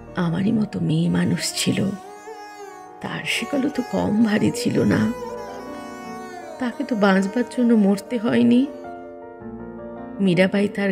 আমারই মতো মেয়ে মানুষ ছিল, তার সেগুলো তো কম ভারী ছিল না। তাকে তো বাঁচবার জন্য মরতে হয়নি। মীরাবাই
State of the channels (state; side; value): identical; both; correlation 1.00